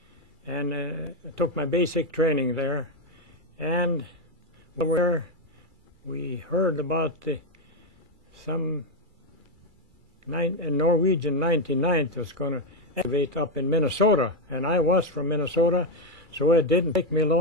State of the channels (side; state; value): left; late; 2.3 ms